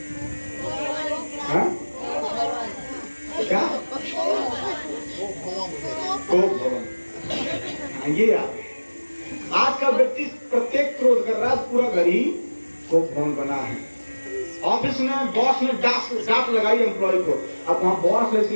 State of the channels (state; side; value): inverted; both; correlation -1.00